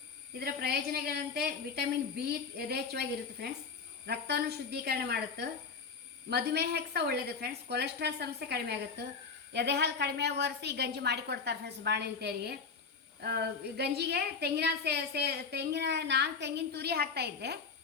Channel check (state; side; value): quieter; right; 5.2 dB